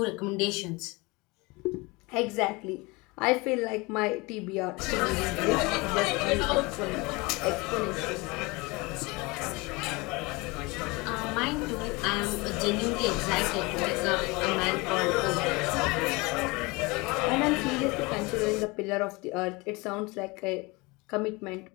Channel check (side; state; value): right; quieter; 25.1 dB